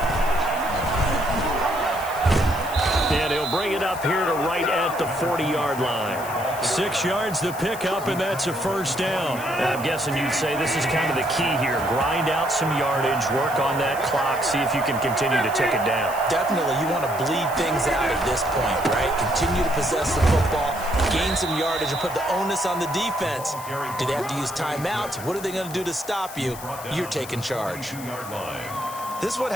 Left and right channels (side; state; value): left; noise; hiss, 14 dB below the sound